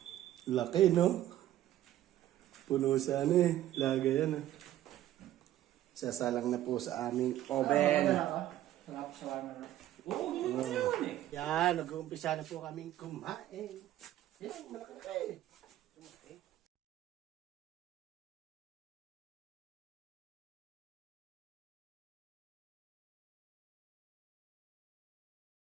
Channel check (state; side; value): quieter; left; 13.2 dB